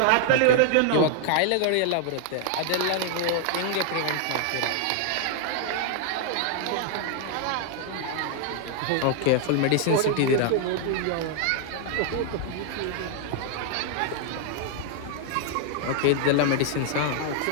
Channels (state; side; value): different; both; correlation 0.00